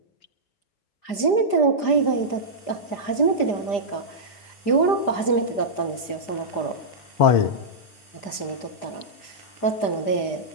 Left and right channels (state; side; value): late; right; 5.0 ms